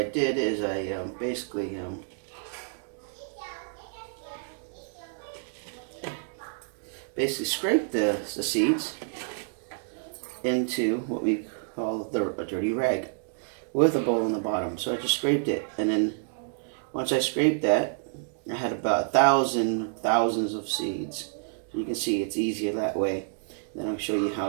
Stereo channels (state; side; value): silent; left; digital silence